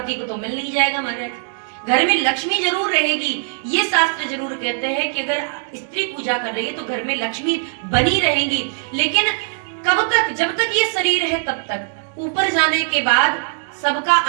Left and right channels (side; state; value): left; silent; digital silence